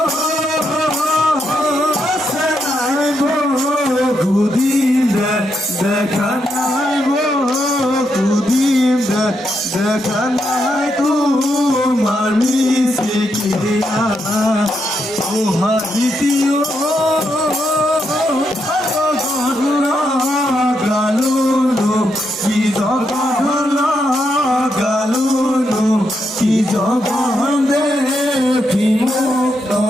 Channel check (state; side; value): normal; both; correlation 0.81